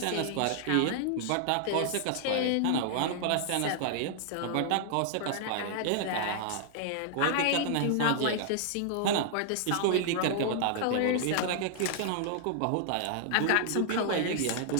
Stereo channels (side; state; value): both; different; correlation -0.01